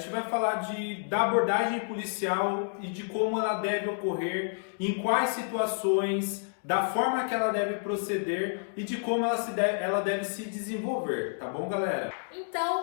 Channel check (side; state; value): right; silent; digital silence